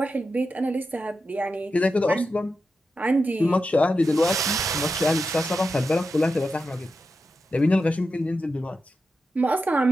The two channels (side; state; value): both; normal; correlation 0.89